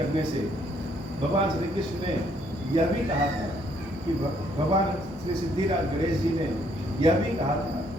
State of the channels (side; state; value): both; normal; correlation 0.68